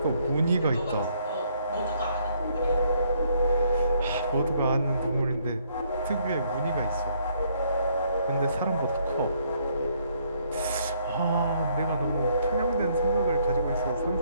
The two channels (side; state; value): both; inverted; correlation -0.68